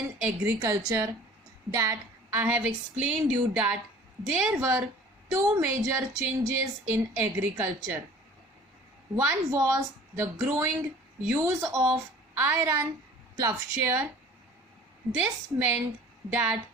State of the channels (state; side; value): normal; both; correlation 0.47